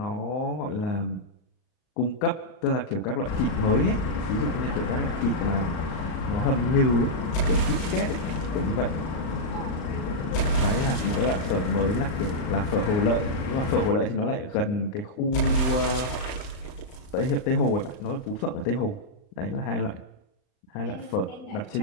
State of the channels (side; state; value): right; late; 38 ms